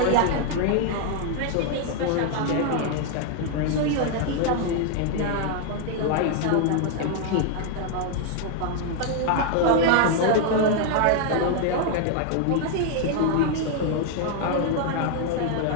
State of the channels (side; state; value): both; different; correlation 0.00